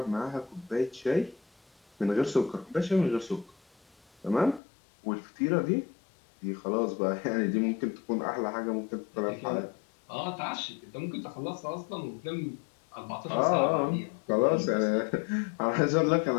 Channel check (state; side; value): drops out; right; at 4.6 s